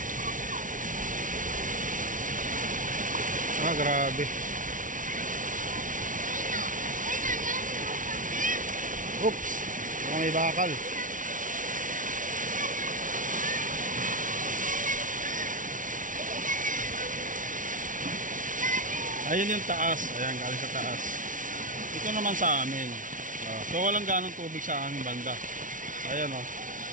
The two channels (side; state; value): left; late; 0.38 ms